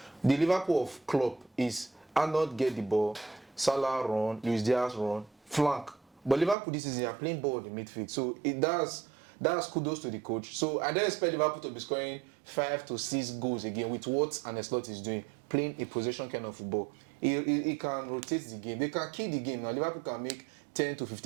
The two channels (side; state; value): left; drops out; at 6.6 s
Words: The Liverpool of Klopp is Arnold get the ball, Salah run, Luis Diaz run, flank. But Liverpool this season are playing ball in the midfield. So that's kudos to the coach. So I don't expect Liverpool to be scoring 5 to 6 goals again with what Ancelotti is doing, playing a possession kind of football. He can rotate the game. They can kill the game. Now Liverpool can make 10 to